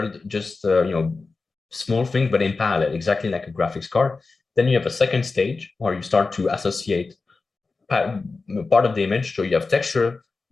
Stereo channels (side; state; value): right; quieter; 4.0 dB